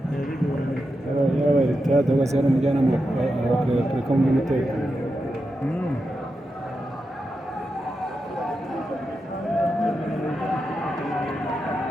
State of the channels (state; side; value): normal; both; correlation 0.88